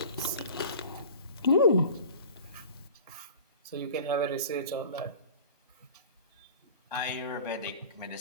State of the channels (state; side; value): inverted; both; correlation -0.40